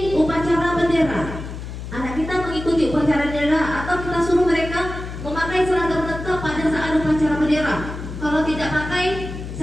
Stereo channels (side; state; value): left; noise; hum, 9 dB below the sound